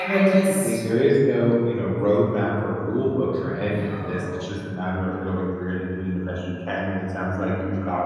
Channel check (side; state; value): both; identical; correlation 1.00